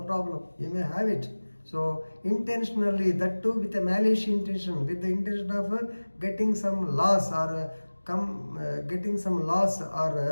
he may have it. So intentionally, that too with a malicious intention, with the intention of getting some loss or getting some loss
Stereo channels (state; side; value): inverted; both; correlation -1.00